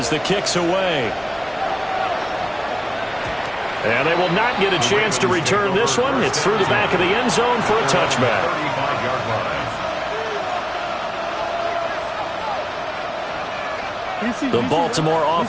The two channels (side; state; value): both; identical; correlation 1.00